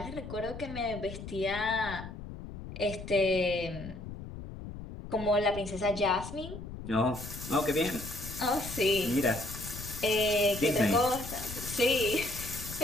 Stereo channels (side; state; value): left; noise; rumble, 10 dB below the sound